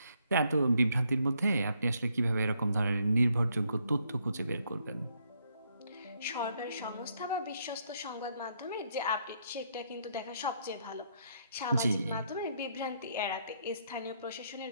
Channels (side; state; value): both; inverted; correlation -0.73